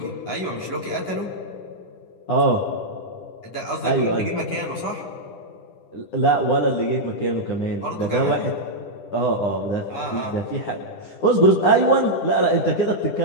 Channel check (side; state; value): right; late; 9.8 ms